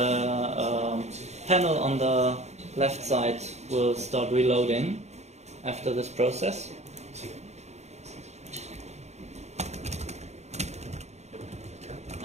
panel on the left side will start reloading after this process.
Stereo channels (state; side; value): late; left; 0.32 ms